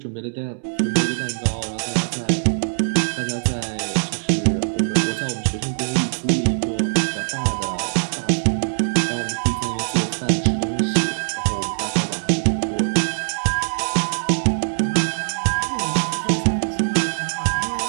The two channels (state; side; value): silent; left; 64 dB below the other